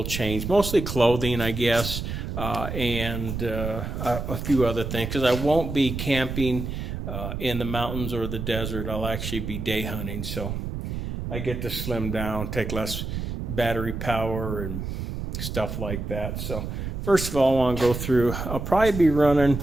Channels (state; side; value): noise; right; rumble, 5 dB below the sound